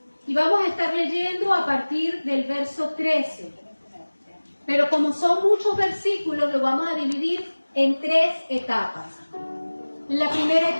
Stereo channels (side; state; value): both; inverted; correlation -1.00